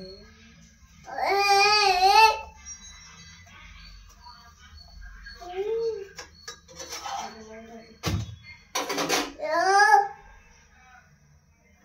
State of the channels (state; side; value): identical; both; correlation 1.00